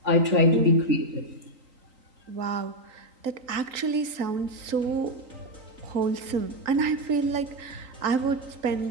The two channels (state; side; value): late; left; 3.8 ms